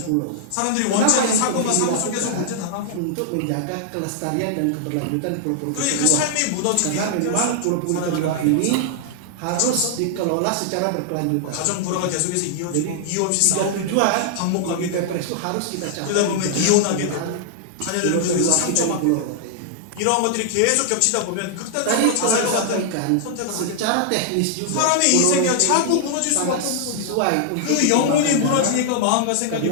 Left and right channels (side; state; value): both; different; correlation -0.01